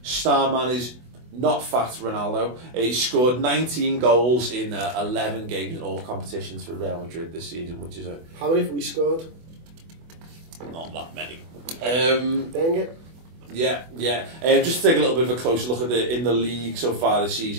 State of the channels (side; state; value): left; late; 24 ms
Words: Star man is not fat Ronaldo. He scored 19 goals in 11 games in all competitions for Real Madrid this season, which is How many have we scored? Not that many. Dang it. Yeah. Just to take a little bit of a closer look at in the league so far this